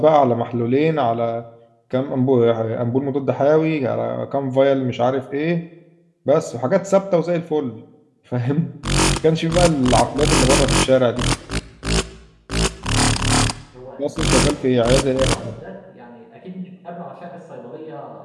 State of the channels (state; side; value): identical; both; correlation 1.00